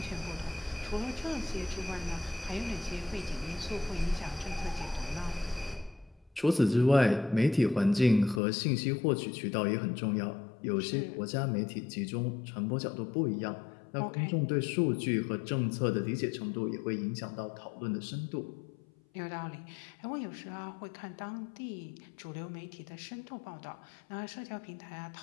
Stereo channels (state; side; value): drops out; right; at 8.4 s